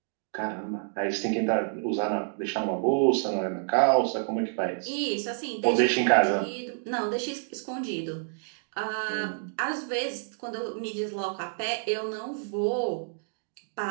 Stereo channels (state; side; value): silent; left; digital silence